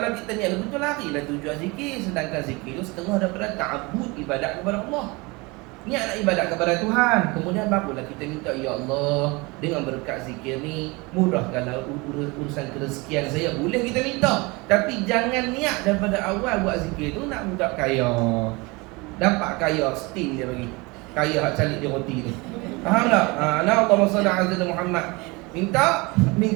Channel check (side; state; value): left; quieter; 25.6 dB